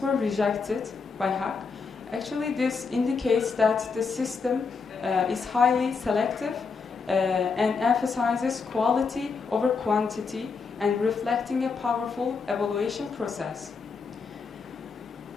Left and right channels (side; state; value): right; quieter; 5.0 dB